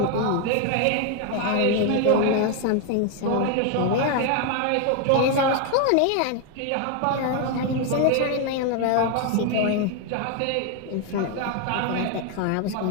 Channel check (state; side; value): different; both; correlation 0.01